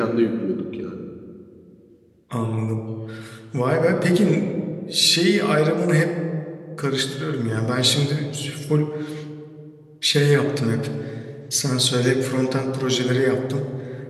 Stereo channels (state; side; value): identical; both; correlation 1.00